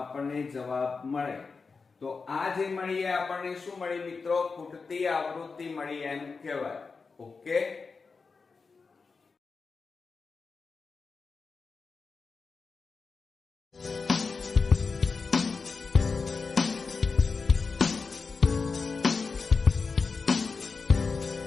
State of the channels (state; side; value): quieter; right; 4.7 dB